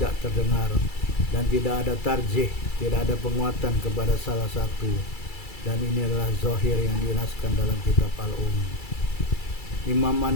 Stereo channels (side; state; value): right; late; 2.3 ms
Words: terdengar, dan tidak ada tarjih, tidak ada penguatan kepada salah satu, dan ini adalah zahir yang dinaskan dalam kitab Imam